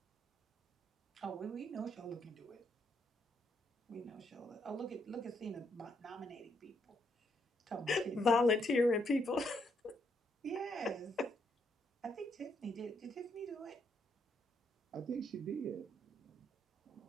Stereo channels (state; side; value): normal; both; correlation 0.75